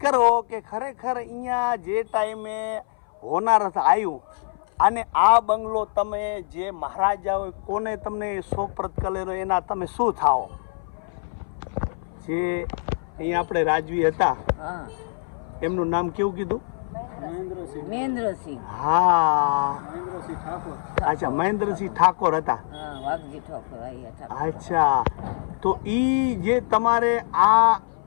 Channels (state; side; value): silent; right; 58 dB below the other